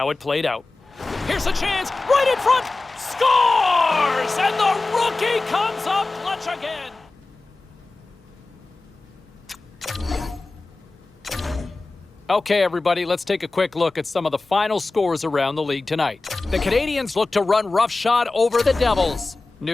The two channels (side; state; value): right; quieter; 3.4 dB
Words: it played out. Here's a chance, right in front, scores! And the rookie comes up clutch again. Okay, everybody, let's take a quick look at some of the final scores around the league tonight. The Canadiens look to run roughshod over the Devils.